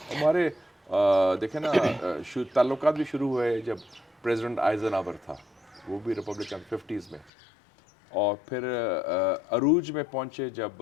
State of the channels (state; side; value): drops out; right; at 7.3 s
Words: ہمارے دیکھیں نا تعلقات بھی شروع ہوئے جب پریزیڈنٹ آئزن آور تھا، وہ بھی ریپبلکن 50s میں، اور پھر عروج میں پہنچے